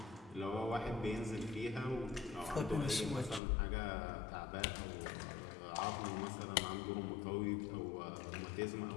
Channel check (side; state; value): right; drops out; at 3.4 s